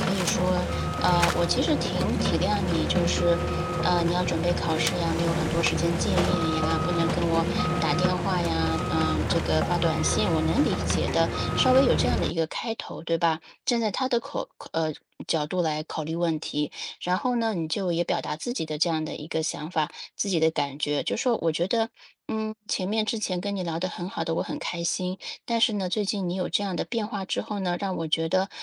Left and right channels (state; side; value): identical; both; correlation 1.00